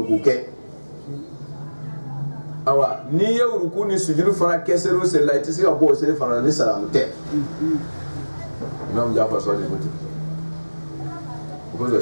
ke awa ni ya uruku ni sujudu fana ke sero se la itse ga bo se fana ni salamu te imam Jafar so de boti ko zo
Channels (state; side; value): inverted; both; correlation -1.00